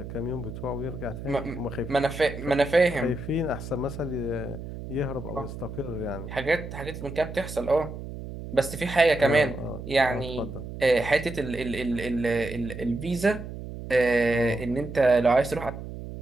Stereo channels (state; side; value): noise; right; hum, 10 dB below the sound